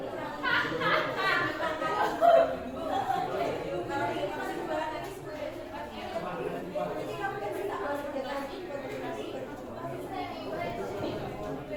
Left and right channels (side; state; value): both; identical; correlation 1.00